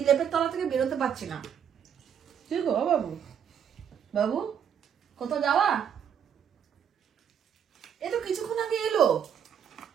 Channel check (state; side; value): quieter; left; 8.3 dB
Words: লেপের তলা থেকে বেরোতে পারছি না। কি গো বাবু, বাবু কোথাও যাওয়া? এ তো কিছুক্ষণ আগে এলো,